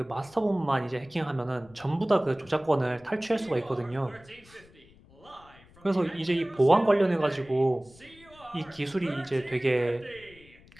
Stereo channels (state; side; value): noise; left; rumble, 25 dB below the sound